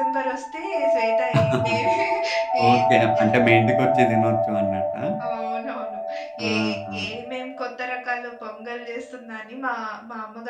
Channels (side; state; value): both; identical; correlation 1.00